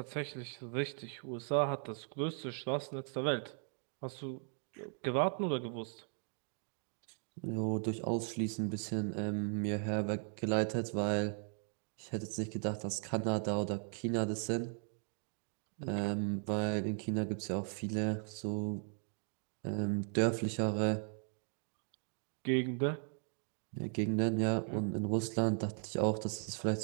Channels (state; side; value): silent; left; 53 dB below the other